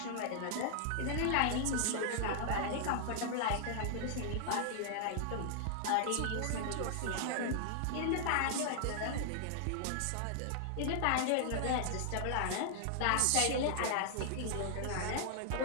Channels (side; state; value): both; different; correlation -0.01